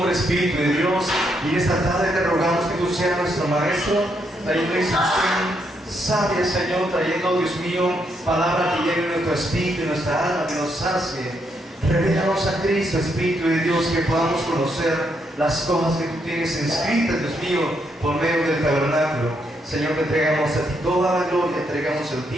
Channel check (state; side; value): normal; both; correlation 0.77